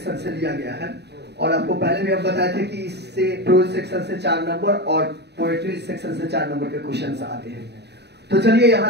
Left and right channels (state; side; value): late; left; 0.49 ms